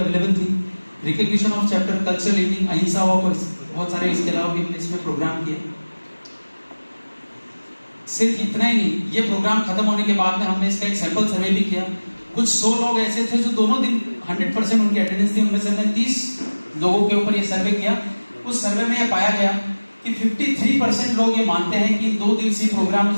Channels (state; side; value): inverted; both; correlation -1.00